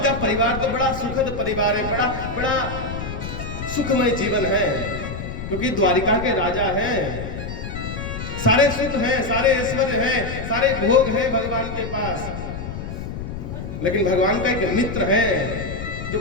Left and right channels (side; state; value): left; noise; rumble, 7 dB below the sound